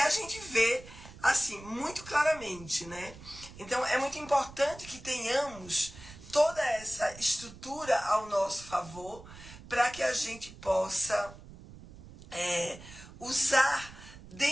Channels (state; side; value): noise; right; rumble, 17 dB below the sound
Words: gente vê assim muito claramente, né? Então é muito importante que tenhamos toda essa estrutura ao nosso favor para que a gente possa usar